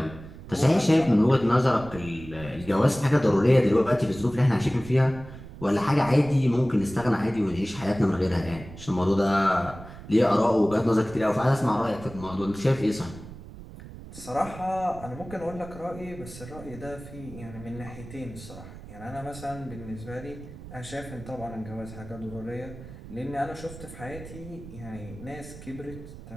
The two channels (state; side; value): noise; right; rumble, 15 dB below the sound